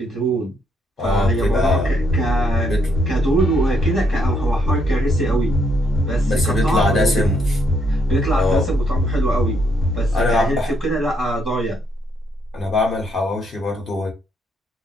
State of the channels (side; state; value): both; normal; correlation 0.74